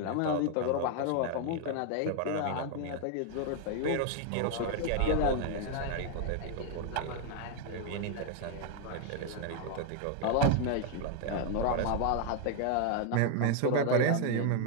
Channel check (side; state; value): both; different; correlation 0.01